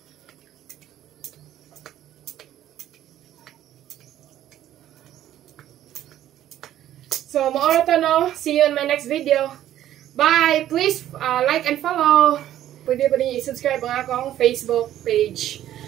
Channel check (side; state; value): left; quieter; 12.2 dB